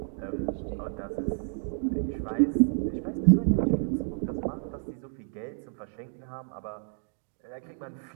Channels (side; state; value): left; silent; digital silence